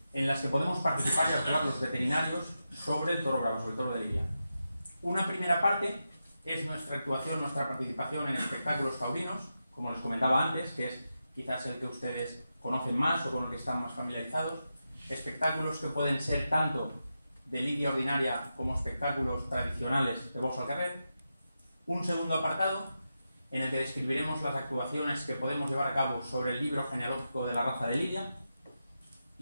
en las que podemos participar y actuar los veterinarios sobre el toro bravo, sobre el toro de lidia. Una primera parte es nuestra actuación, nuestra participación en espectáculos taurinos, como les comentaba antes, que es quizás el que ustedes conocen más o con el que están más familiarizados. Espectáculos que pueden ser tanto de lidia ordinaria como espectáculos tradicionales de box al carrer. Un segundo apartado en el que describiremos las actuaciones que podemos llevar a cabo sobre el libro genealógico de la raza de lidia.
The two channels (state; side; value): inverted; both; correlation -0.89